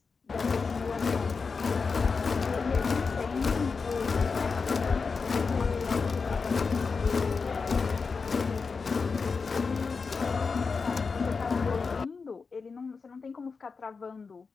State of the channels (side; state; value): right; quieter; 4.9 dB